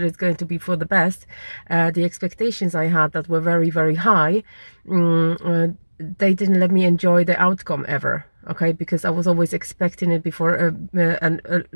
going to be for the best, the expectations I had that were very, very high, they didn't let me enjoy the outcome ever. Okay, because I was always expecting it before, and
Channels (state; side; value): inverted; both; correlation -1.00